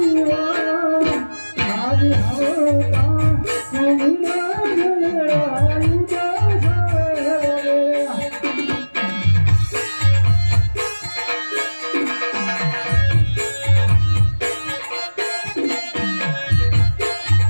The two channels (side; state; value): both; inverted; correlation -1.00